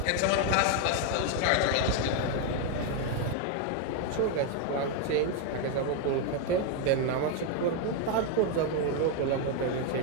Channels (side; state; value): both; different; correlation 0.01